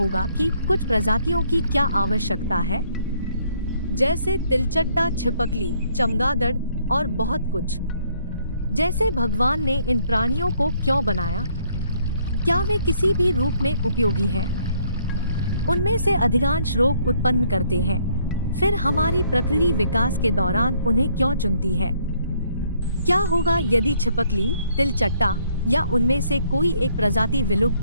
कि कुछ प्रजातियों की क्या आवश्यकता है, जैसे तिलचट्टा, छिपकली, चमगादड़ और बहुत कुछ। जैसे भगवान ने इन प्राणियों को क्यों बनाया? क्या वे किसी भी रूप में उपयोगी हैं? उनमें से अधिकांश रोग उत्पन्न करते हैं। फिर हमारी प्रकृति विकास के दौरान उन्हें क्यों चुनती है? क्या होगा यदि छिपकली, तिलचट्टा या उनमें से कोई एक प्रजाति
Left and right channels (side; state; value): both; inverted; correlation -0.67